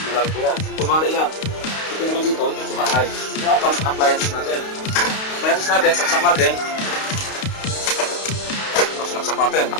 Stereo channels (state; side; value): late; right; 32 ms